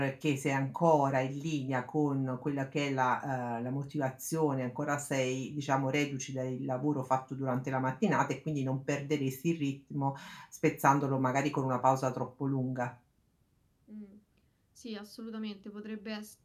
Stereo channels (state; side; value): identical; both; correlation 1.00